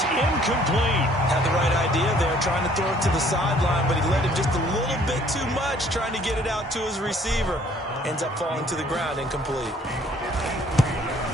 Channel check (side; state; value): both; normal; correlation 0.59